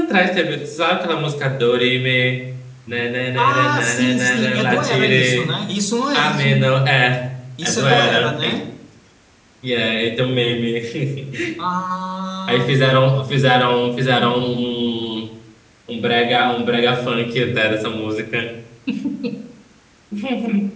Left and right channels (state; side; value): identical; both; correlation 1.00